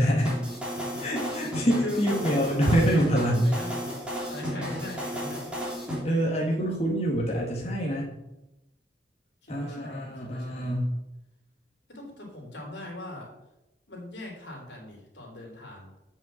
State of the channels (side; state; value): both; normal; correlation 0.72